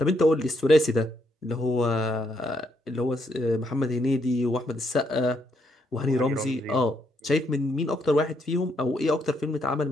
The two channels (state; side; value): normal; both; correlation 0.76